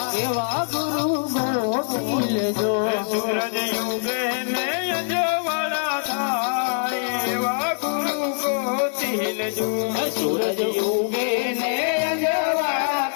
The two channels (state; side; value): silent; right; digital silence